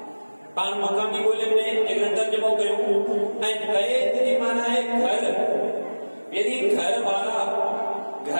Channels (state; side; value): inverted; both; correlation -1.00